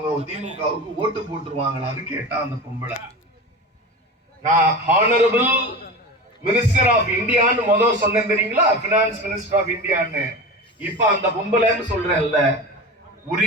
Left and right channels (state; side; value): normal; both; correlation 0.29